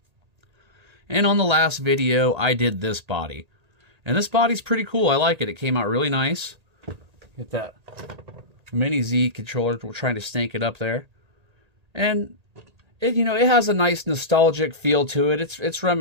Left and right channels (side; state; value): left; late; 1.8 ms